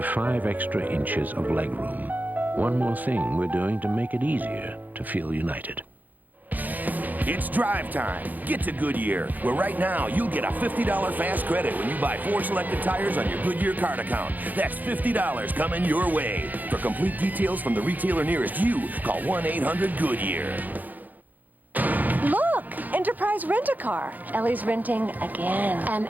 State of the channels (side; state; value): left; late; 0.083 ms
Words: 5 extra inches of legroom. One more thing we're doing to make it easier to feel united. It's drive time. Get to Goodyear, where right now you'll get a $50 fast credit when you buy 4 selected tires on your Goodyear card account. That's $50 coming your way. For complete details from the retailer nearest you, call 1-800-GOODYEAR. Look! Enterprise Rent-A-Car. Ellie's renting again. And